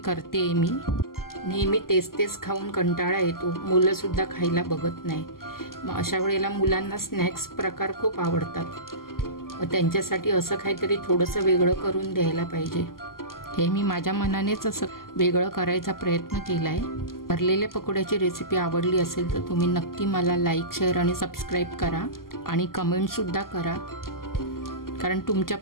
मी. नेहमी तेच खाऊन कंटाळा येतो. मुलं सुद्धा खायला बघत नाही. मग अशा वेळेला मुलांना स्नॅक्स प्रकार खूप आवडतात. त्यांच्यासाठी असं काहीतरी थोडंसं वेगळं करून द्यायला पाहिजे. हे मी माझ्या मनानेच असं वेगळं करायचा प्रयत्न केला आहे. भरलेल्या पकोड्याची रेसिपी आवडली असेल तर तुम्ही नक्की मला लाईक, शेअर आणि सबस्क्राईब करा आणि कमेंटसुद्धा करा, कारण तुमच्या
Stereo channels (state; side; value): late; right; 0.92 ms